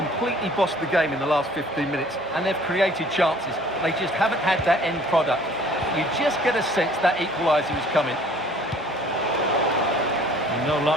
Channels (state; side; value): normal; both; correlation 0.53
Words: bossed the game in the last 15 minutes and they've created chances. They just haven't had that end product. You just get a sense that equaliser is coming. No